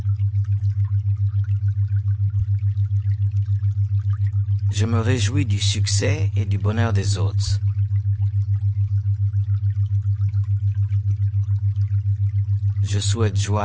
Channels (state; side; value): identical; both; correlation 1.00